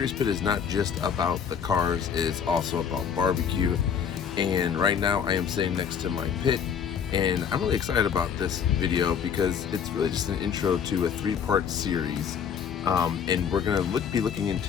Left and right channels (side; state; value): right; quieter; 7.4 dB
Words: Pit is not just about the cars, it's also about barbecue. And right now I am sitting next to my pit, and I'm really excited about this video because it's really just an intro to a 3-part series. And we're going to be looking